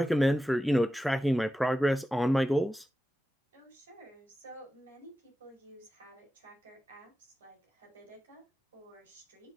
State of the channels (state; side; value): normal; both; correlation 0.94